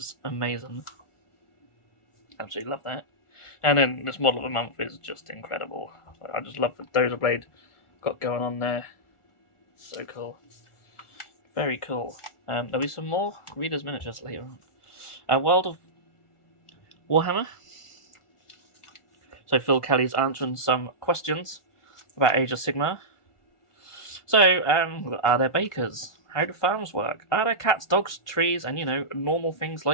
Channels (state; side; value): late; right; 1.4 ms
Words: amazing. Absolutely love that. And then this model of the month is just incredible. I just love the Dozer Blade got going on there. So cool. Very cool. There'll be some more readers miniatures later on. World of Warhammer. So Phil Kelly's answering some questions about Age of Sigmar. So, are there bakers? How do farms work? Are there cats, dogs, trees, and, normal things